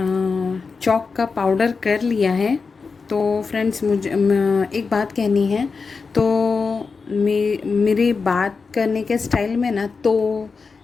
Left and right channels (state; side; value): quieter; right; 4.8 dB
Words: चॉक का पाउडर कर लिया है। तो फ्रेंड्स मुझे एक बात कहनी है। तो मेरी बात करने के स्टाइल में ना, तो